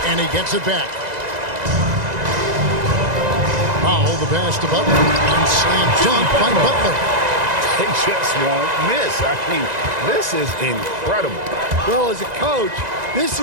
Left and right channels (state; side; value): late; left; 1.9 ms